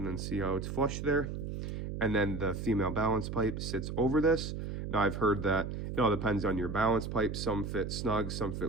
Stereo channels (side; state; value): right; noise; hum, 5 dB below the sound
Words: then see how it's flush there. And then the female balance pipe sits over this. Now I've heard that it all depends on your balance pipe. Some fit snug, some